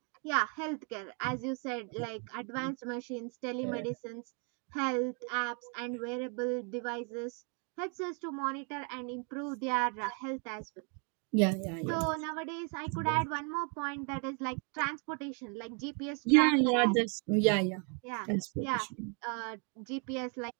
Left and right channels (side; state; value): left; quieter; 38.1 dB